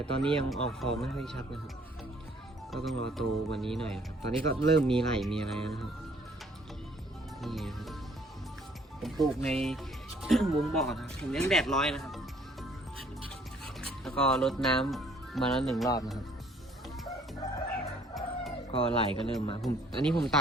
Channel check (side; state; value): both; normal; correlation 0.60